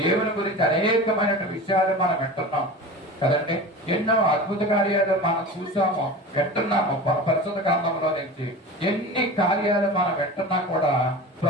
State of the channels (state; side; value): normal; both; correlation 0.33